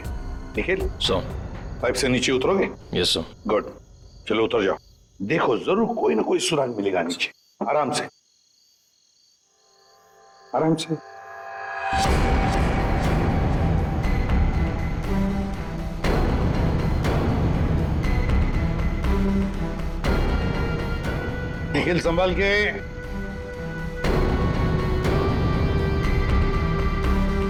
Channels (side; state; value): both; identical; correlation 1.00